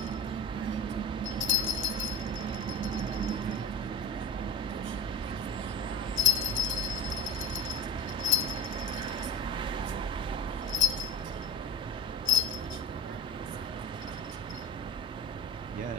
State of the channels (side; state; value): both; normal; correlation 0.39